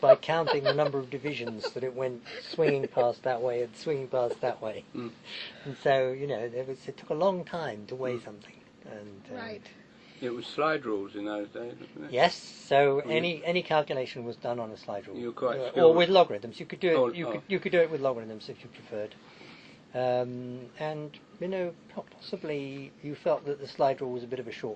counting the number of divisions that it went swinging past that way and swinging past that way. And so it took a long time to weigh something. And right. It was slide rules in those days, wasn't it? Yes. So any calculation was done on a slide rule, You were quite skilled. or with logarithms. You could do it. Oh, You could do it with logarithms if you preferred. And possibly you felt that the slide rule was a bit of a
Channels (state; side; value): identical; both; correlation 1.00